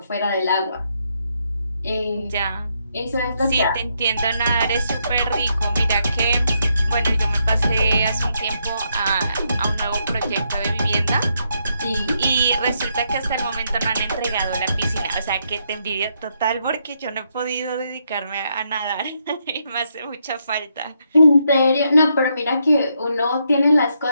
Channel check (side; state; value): both; inverted; correlation -0.78